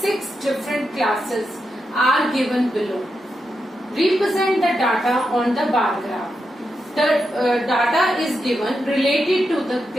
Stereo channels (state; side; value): normal; both; correlation 0.86